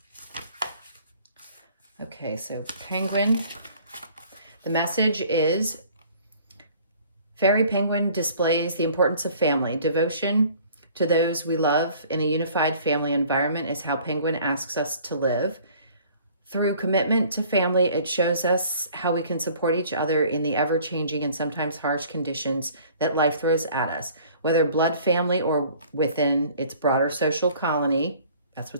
Okay, so penguin. The message is, Fairy Penguin displays the importance of family. Devotion to those we love in a unified family environment is how Penguin asks us to live. Through commitment to family, it shows us how we can support each other in the ever-changing and sometimes harsh conditions that life throws at us. Whether blood family or within its broader social colony, that's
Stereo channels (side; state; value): both; inverted; correlation -0.53